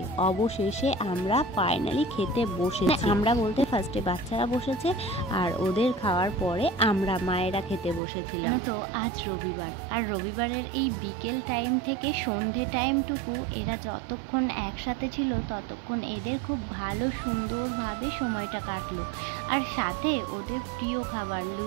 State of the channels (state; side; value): drops out; left; at 8.0 s